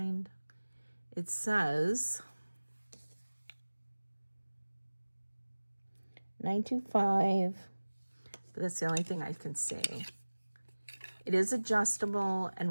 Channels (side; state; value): both; inverted; correlation -1.00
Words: It says 925, but that's the only thing I can see. It is adjustable,